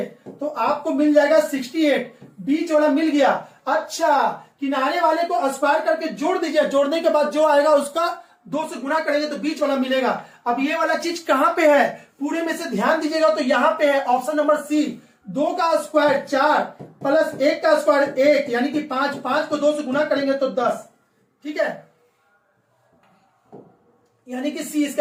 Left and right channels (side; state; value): both; identical; correlation 1.00